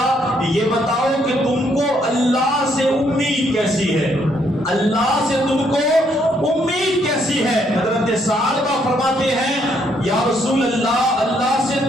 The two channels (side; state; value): both; normal; correlation 0.71